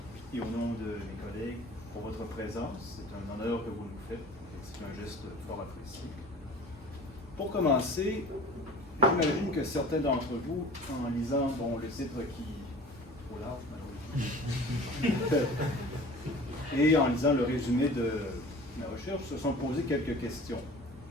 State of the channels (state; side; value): normal; both; correlation 0.43